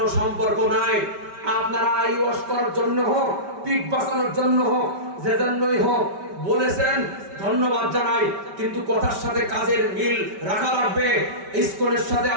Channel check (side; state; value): left; late; 5.2 ms